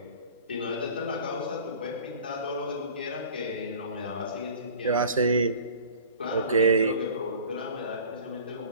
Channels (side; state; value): both; inverted; correlation -0.44